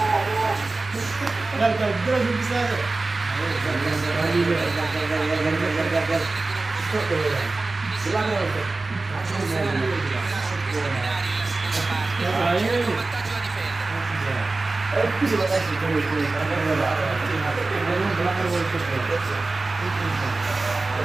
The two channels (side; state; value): left; quieter; 3.4 dB